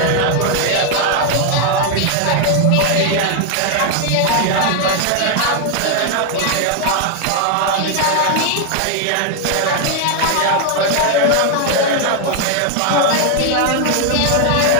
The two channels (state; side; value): different; both; correlation 0.01